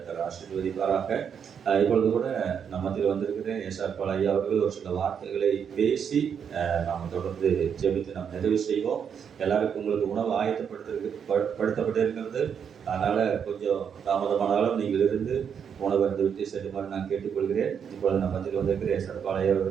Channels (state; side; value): quieter; left; 7.5 dB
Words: ஆசீர்வதிப்பாராக. இப்பொழுது கூட நம்ம மத்தியில் வந்திருக்கிற எஸ்ஆர் பால் ஐயா அவர்கள் ஒரு சில வார்த்தைகளை பேசி நாம் தொடர்ந்து ஜெபித்து நாம் நிறைவு செய்வோம். எல்லாருக்கும் உங்களுக்கு உணவு ஆயத்தப்படுத்தப்பட்டிருக்கிறது. அதனால கொஞ்சம் தாமதமானாலும் நீங்கள் இருந்து உணவு விட்டு செல்லுமாறு நான் கேட்டுக்கொள்கிறேன். இப்பொழுது நம்ம மத்தியில் வந்திருக்கிற எஸ்ஆர் பால் ஐயா